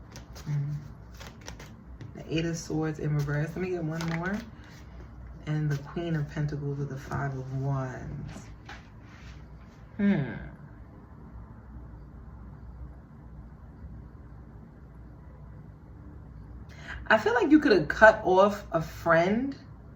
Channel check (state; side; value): identical; both; correlation 1.00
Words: the Eight of Swords in reverse. Let me get one more. And the Queen of Pentacles with the Five of Wands. I feel like you could have cut off a friend